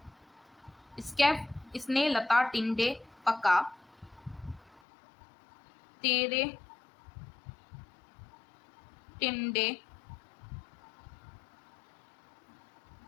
स्कैफ, स्ने लता टिंडे पका तेरे टिंडे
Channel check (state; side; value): drops out; right; at 4.8 s